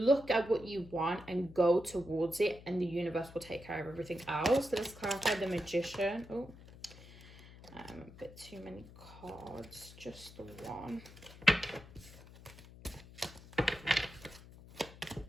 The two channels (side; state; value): left; noise; hum, 18 dB below the sound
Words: at what you want and go towards it, and the universe will take care of everything else. So let's clarify the Magician. Oh, a bit too many cards, just the one.